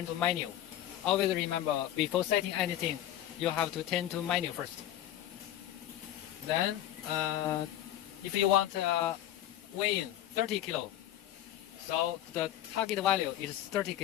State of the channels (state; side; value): quieter; right; 12.7 dB